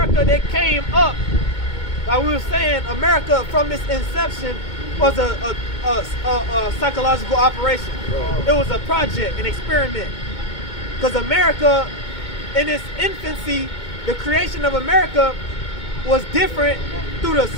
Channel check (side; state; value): right; late; 2.2 ms